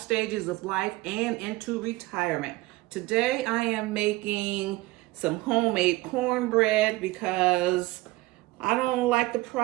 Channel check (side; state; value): left; quieter; 20.5 dB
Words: of life and into retirement. Today I am making some homemade cornbread because I don't like the